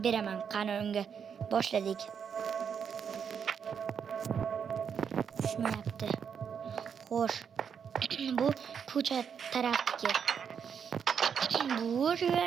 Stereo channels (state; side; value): quieter; left; 7.2 dB